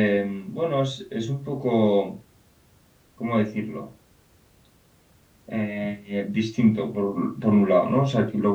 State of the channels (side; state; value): both; identical; correlation 1.00